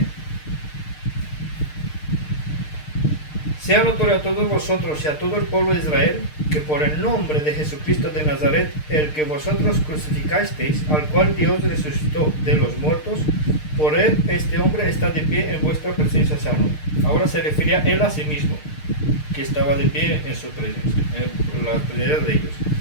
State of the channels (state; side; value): late; right; 6.6 ms